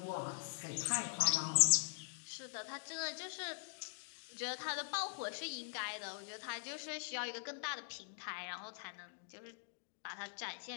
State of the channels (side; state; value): right; silent; digital silence